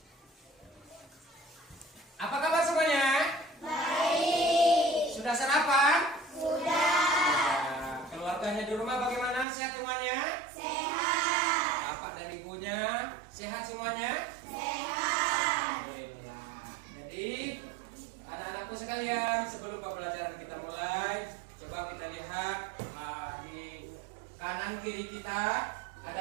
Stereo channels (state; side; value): drops out; left; at 9.5 s